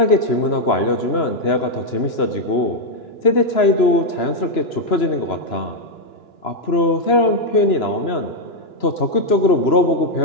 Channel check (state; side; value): late; right; 3.0 ms